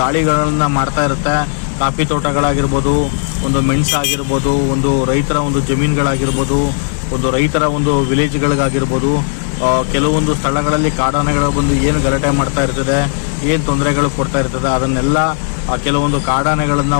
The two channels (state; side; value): silent; right; 70 dB below the other